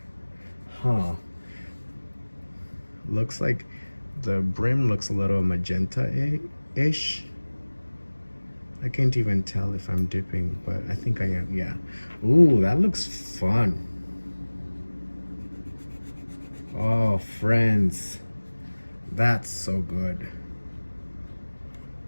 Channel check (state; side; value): inverted; both; correlation -1.00